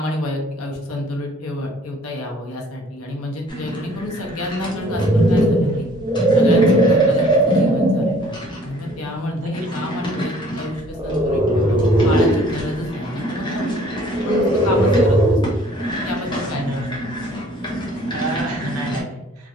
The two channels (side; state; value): both; normal; correlation 0.56